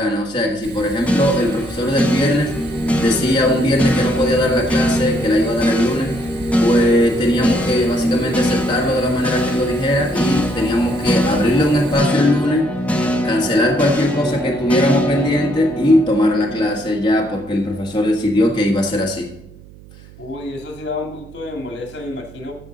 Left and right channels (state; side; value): noise; right; hum, 22 dB below the sound